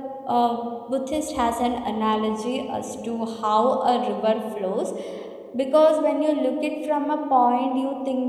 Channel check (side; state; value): both; identical; correlation 1.00